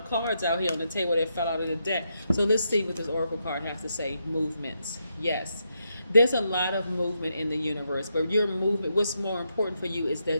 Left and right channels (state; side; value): inverted; both; correlation -0.82